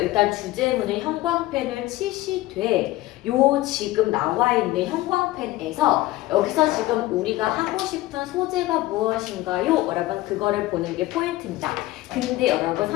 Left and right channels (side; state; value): right; quieter; 17.4 dB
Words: 주제문을 형광펜을 치시되 요 지금 나와 있는 형광펜에서 여기서 지금 우리가 하고 싶은 소재가 무엇인가요? 여러분 그거를 보는 게 포인트입니다. 근데 여러분